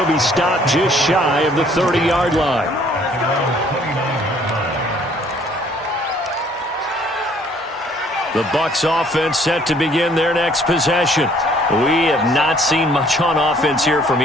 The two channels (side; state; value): both; normal; correlation 0.60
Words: be stopped just shy of the 30-yard line. The Bucs offense set to begin their next possession. We have not seen much on offense here from